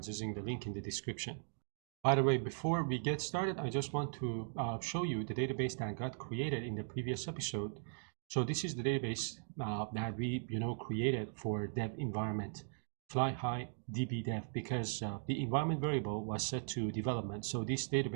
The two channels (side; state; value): left; silent; digital silence